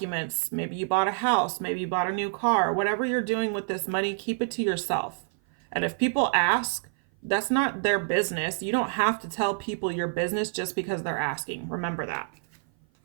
Maybe you bought a house. Maybe you bought a new car. Whatever you're doing with this money, keep it to yourself. And if people ask, that's not their business. You don't have to tell people your business just because they're asking. Remember that.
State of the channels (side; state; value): left; silent; 56 dB below the other